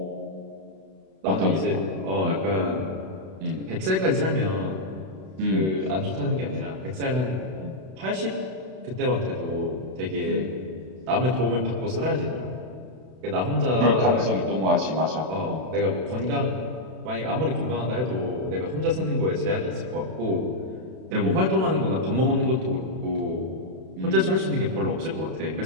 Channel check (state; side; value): late; left; 32 ms